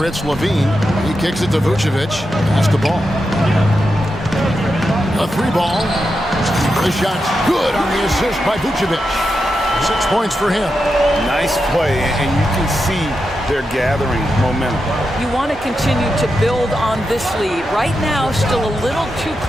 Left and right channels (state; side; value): normal; both; correlation 0.88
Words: it's Levine. He kicks it to Vucevic. Pass the ball. A 3-ball. The shot's good on the assist by Vucevic. 6 points for him. Nice play, and you can see they're gathering momentum. You want to continue to build on this lead. Right now, still a little too